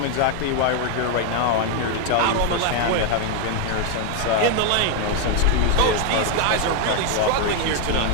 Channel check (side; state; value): both; different; correlation 0.01